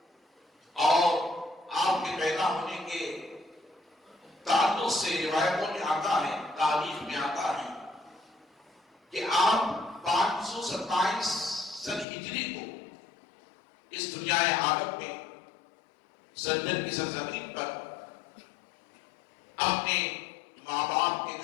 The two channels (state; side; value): drops out; right; at 12.1 s